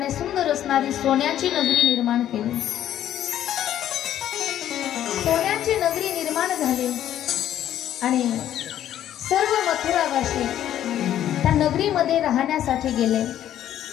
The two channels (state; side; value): quieter; right; 11.4 dB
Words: सुंदर असणारी सोन्याची नगरी निर्माण केली. सोन्याची नगरी निर्माण झाली आणि सर्व मथुरावासी त्या नगरीमध्ये राहण्यासाठी गेले.